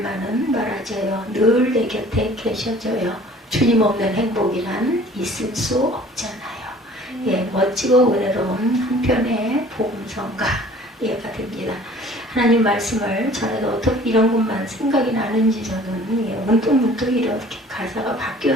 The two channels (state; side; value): normal; both; correlation 0.50